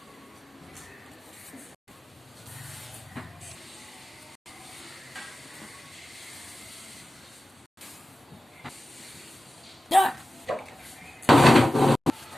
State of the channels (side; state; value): both; normal; correlation 0.94